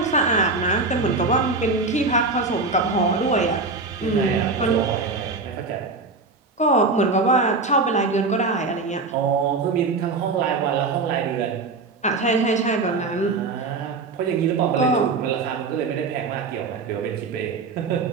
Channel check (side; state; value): left; quieter; 3.9 dB